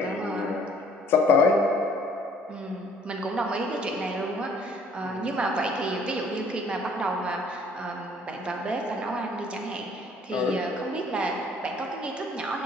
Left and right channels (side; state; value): both; normal; correlation 0.58